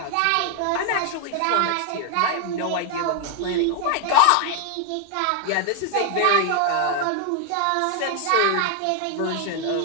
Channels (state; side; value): different; both; correlation 0.01